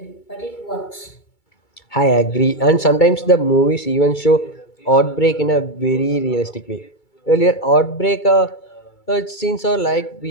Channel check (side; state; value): right; late; 2.3 ms